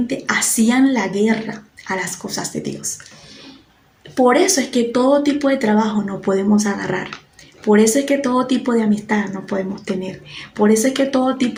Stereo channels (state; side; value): identical; both; correlation 1.00